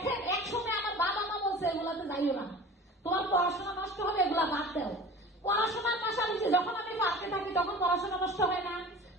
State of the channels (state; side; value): normal; both; correlation 0.39